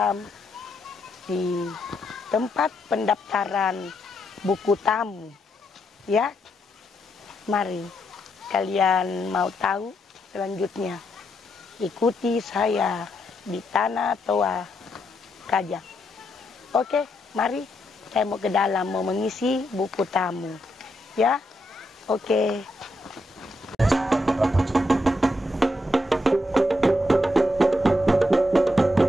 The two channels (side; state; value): both; normal; correlation 0.80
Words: di tempat pendaftaran buku tamu. Ya, mari kalian mau tahu selanjutnya. Ikuti saya di Tanah Toa Kajang. Oke, mari saya mau ke dalam mau mengisi buku tamu. Ya, oke.